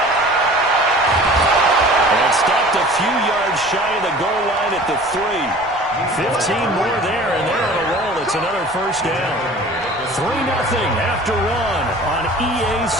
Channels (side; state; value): right; noise; rumble, 22 dB below the sound